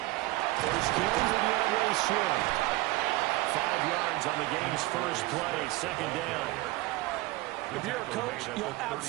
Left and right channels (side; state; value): left; quieter; 19.5 dB